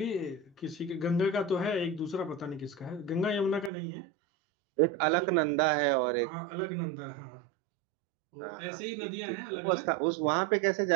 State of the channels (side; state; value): left; drops out; at 3.7 s